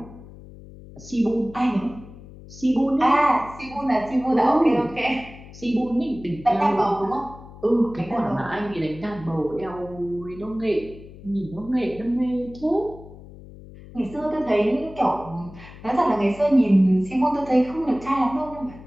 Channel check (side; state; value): left; noise; hum, 18 dB below the sound